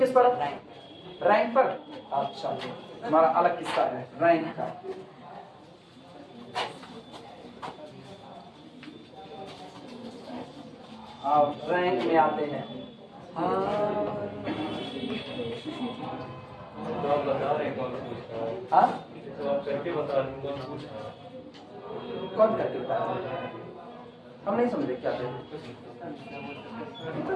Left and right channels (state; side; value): identical; both; correlation 1.00